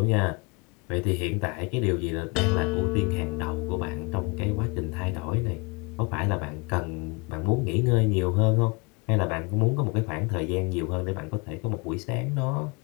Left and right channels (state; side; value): quieter; right; 29.7 dB